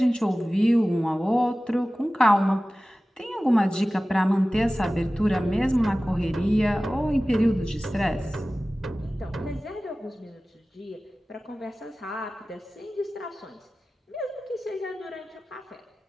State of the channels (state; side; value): normal; both; correlation 0.97